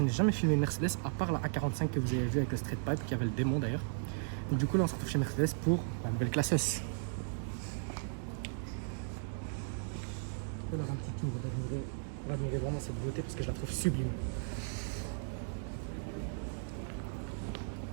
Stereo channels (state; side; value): silent; left; digital silence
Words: n'ai jamais filmé une Mercedes à part la A45 que vous avez vu avec le Street Pipe qui avait le démon d'ailleurs. Donc du coup là on se retrouve chez Mercedes pour la nouvelle classe S. Je vais leur un petit tour pour admirer vraiment cette beauté parce que je la trouve sublime.